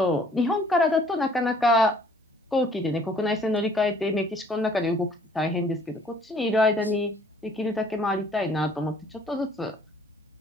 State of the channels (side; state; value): both; normal; correlation 0.58